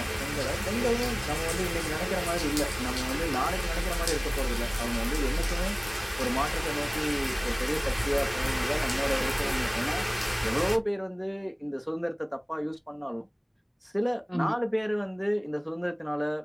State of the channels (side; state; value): both; identical; correlation 1.00